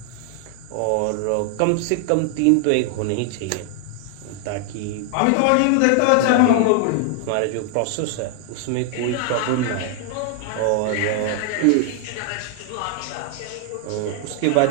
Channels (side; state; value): both; different; correlation 0.00